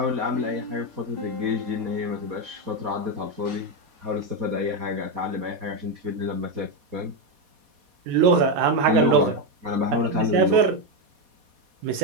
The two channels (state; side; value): late; left; 4.2 ms